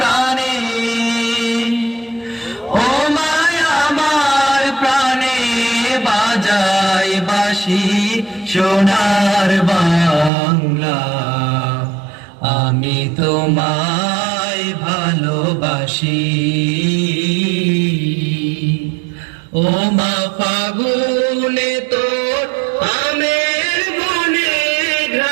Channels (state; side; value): drops out; left; at 10.3 s